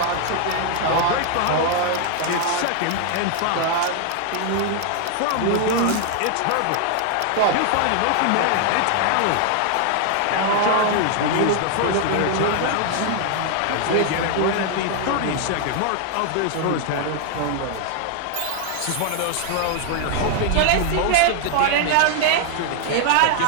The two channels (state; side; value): different; both; correlation 0.00